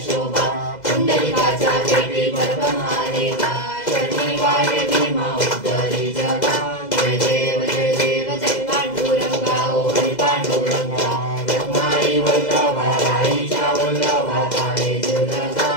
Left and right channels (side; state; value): right; late; 2.0 ms